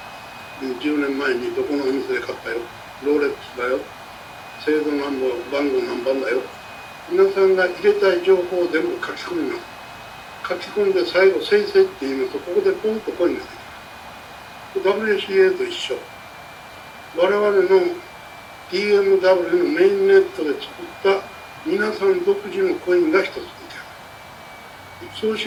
10年前にどこのお店で買ったよ、ローレックスだよ、製造番号何番だよ、皆さんが入れたい情報を全部書き込みます。書き込んで最後生成って言いますと、ここでポンとコインができます。WCA と一緒。我々の DMW のメインネットで作った皆さん独自のコインが一つ出来上がる。そう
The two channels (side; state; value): both; identical; correlation 1.00